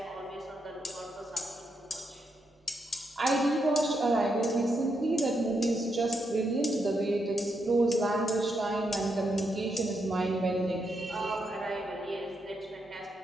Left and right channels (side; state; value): both; normal; correlation 0.81